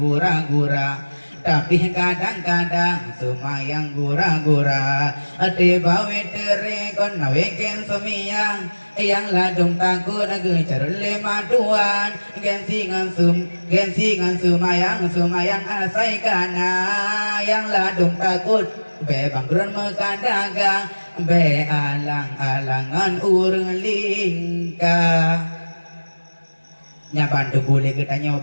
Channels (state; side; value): inverted; both; correlation -1.00